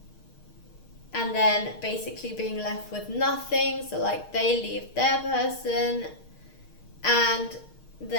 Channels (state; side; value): late; right; 6.5 ms